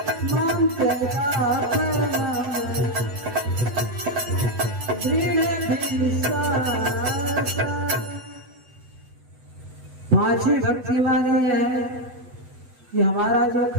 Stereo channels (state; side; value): late; left; 8.1 ms